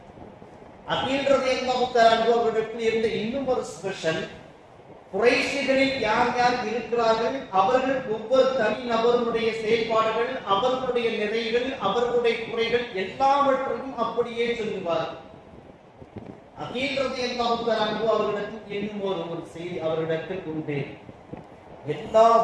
அகீல் ரலியல்லாஹு தஆலா அன்ஹு அவர்களிடத்தில் இருந்த இன்னும் ஒரு ஸ்பெஷல், குறைஷிகளில் யார் யார் இருக்கிறார்கள், அவர்கள் ஒவ்வொரு தனி நபர்களுடைய செயல்பாடுகள், அவர்களுடைய நிறைகள், அவர்களுடைய குறைகள் எல்லாவற்றையும் அப்படியே சொல்லுவார். அகீல் ரலியல்லாஹு தஆலா அன்ஹு அவர்களிடத்தில் இன்னும் ஒரு செய்தி அவர்களிடத்தில் உண்டு. எல்லா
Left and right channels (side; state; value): both; identical; correlation 1.00